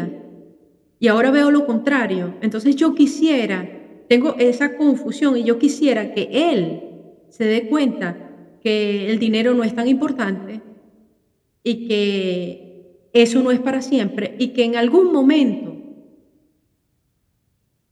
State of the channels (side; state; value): both; identical; correlation 1.00